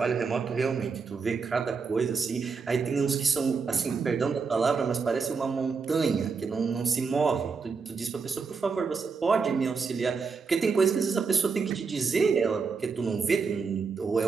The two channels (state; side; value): quieter; left; 5.1 dB